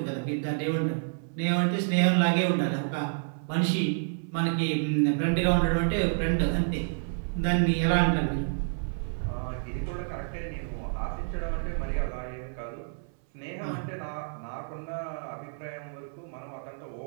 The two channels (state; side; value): silent; left; 59 dB below the other